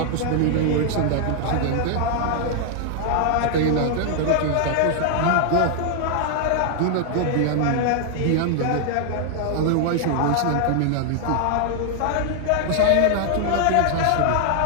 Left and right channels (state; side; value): different; both; correlation 0.00